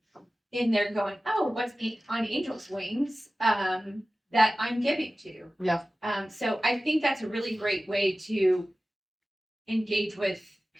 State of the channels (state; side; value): normal; both; correlation 0.96